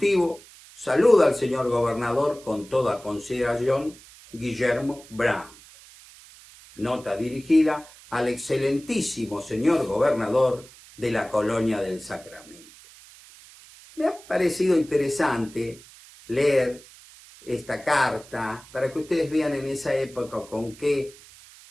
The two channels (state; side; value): noise; right; hiss, 22 dB below the sound